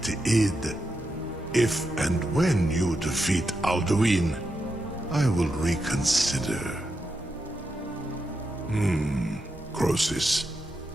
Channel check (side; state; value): both; normal; correlation 0.85